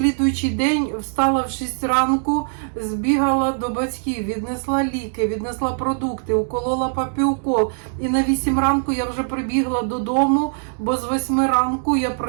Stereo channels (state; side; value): silent; left; 62 dB below the other